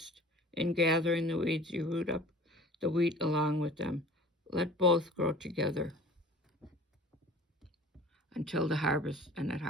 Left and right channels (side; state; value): both; normal; correlation 0.45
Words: in gathering the weeds you root up the wheat along with them. Let both grow together until the harvest, and at